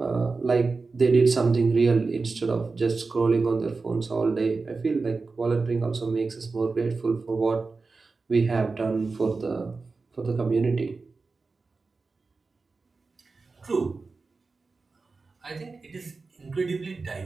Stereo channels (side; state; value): left; quieter; 4.1 dB